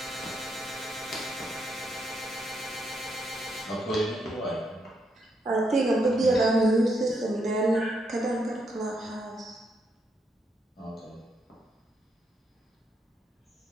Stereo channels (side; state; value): both; normal; correlation 0.78